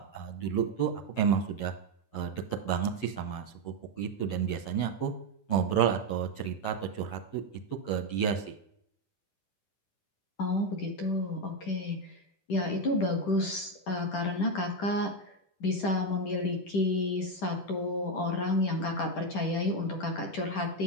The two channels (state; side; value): late; right; 10 ms